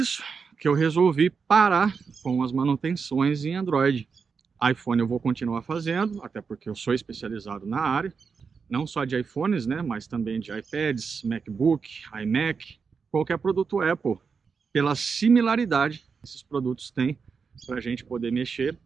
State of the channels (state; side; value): quieter; left; 5.5 dB